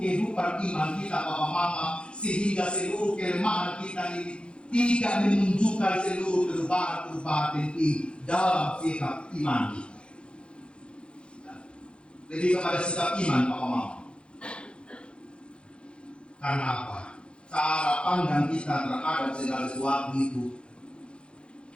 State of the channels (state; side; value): late; right; 0.056 ms